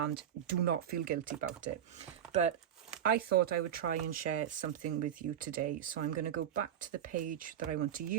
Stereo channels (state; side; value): quieter; left; 9.8 dB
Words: do not feel guilty about it. But I thought I would try and share something with you today. So I'm going to go back to the page that I want to